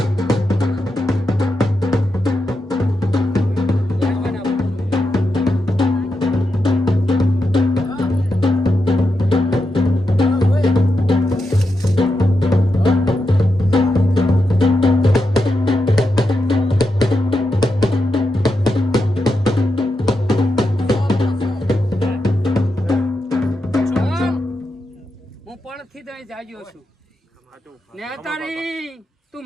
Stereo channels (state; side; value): normal; both; correlation 0.86